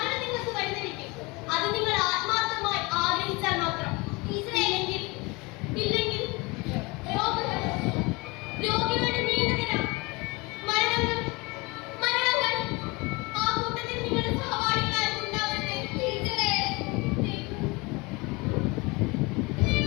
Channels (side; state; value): right; quieter; 25.6 dB